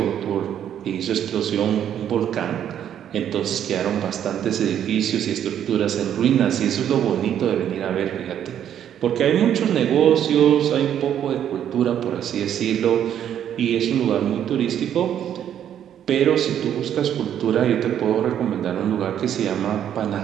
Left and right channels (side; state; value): left; quieter; 9.9 dB